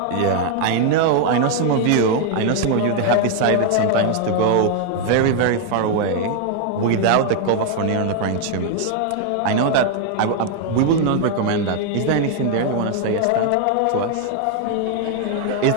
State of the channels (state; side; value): different; both; correlation 0.00